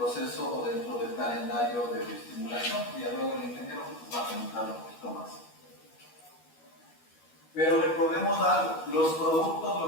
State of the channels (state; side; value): late; right; 12 ms